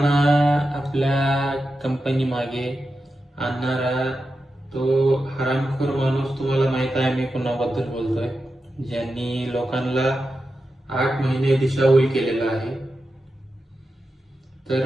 आपल्या कंपनी मागे आणणारा तो हरामखोर माणूस, तुम्हाला माहित आहे मी कोणाबद्दल बोलतोय, ज्यांनी लोकांना 8 महिने दिशाभूल केलेला आहे. तर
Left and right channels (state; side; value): normal; both; correlation 0.90